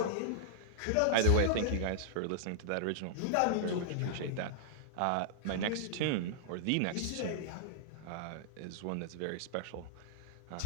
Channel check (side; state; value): both; different; correlation -0.01